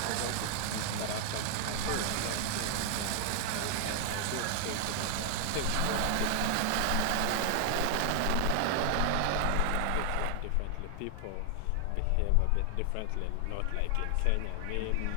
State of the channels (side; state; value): both; different; correlation 0.00